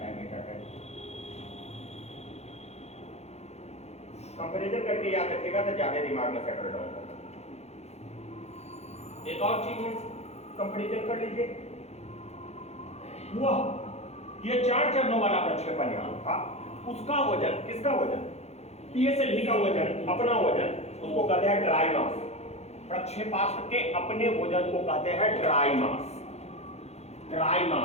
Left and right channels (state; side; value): late; right; 0.31 ms